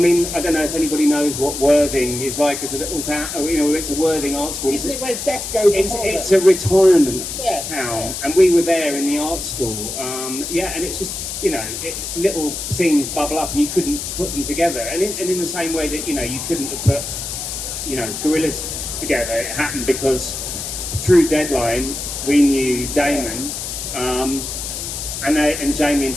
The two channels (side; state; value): left; noise; hiss, 6 dB below the sound